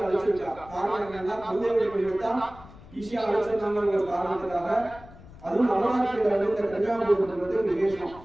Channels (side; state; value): left; noise; rumble, 19 dB below the sound